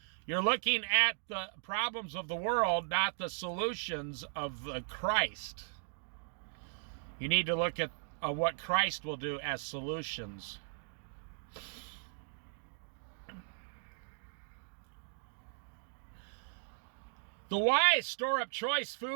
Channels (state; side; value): silent; left; digital silence